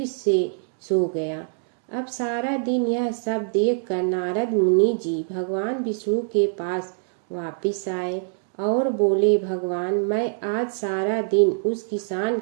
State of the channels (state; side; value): silent; left; digital silence